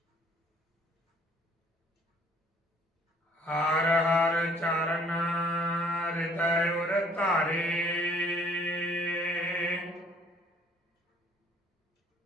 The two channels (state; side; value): normal; both; correlation 0.59